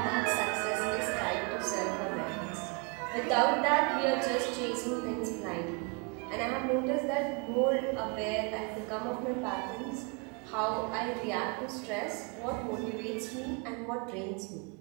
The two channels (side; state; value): left; quieter; 32.6 dB